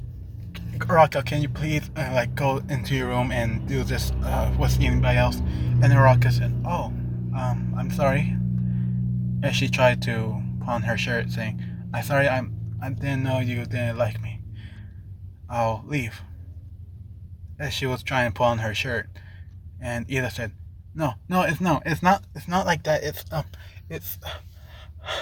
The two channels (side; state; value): both; identical; correlation 1.00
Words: Uraraka, can you please go into your room and do this with anybody else?" And Uraraka said, "Oh, I'm sorry." As she tried to put on her shirt, saying, "I'm sorry, I didn't know you didn't like me. I'll leave." As she was trying to put on her shirt, and Ida said, "No, it's not like that. It's